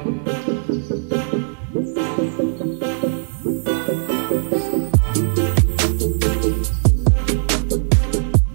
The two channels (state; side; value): silent; left; digital silence